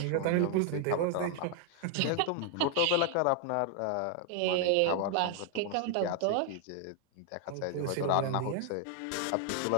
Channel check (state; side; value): different; both; correlation 0.00